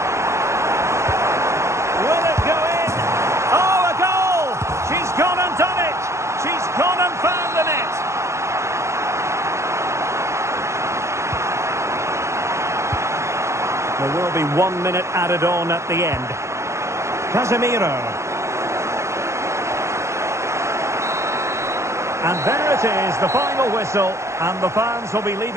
There will be 1 minute added on at the end. Casemiro. And there it is, the final whistle. And the fans will be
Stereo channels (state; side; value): late; left; 0.14 ms